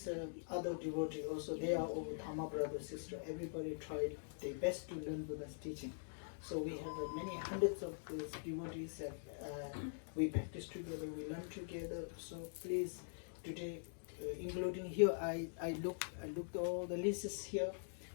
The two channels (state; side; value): silent; right; digital silence